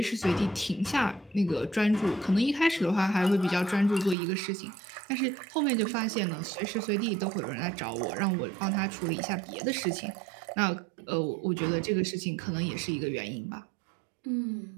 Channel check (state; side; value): drops out; left; at 4.2 s